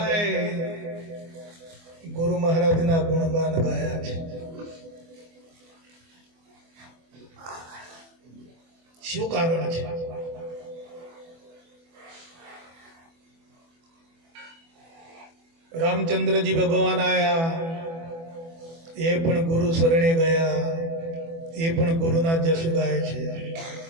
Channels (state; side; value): late; left; 24 ms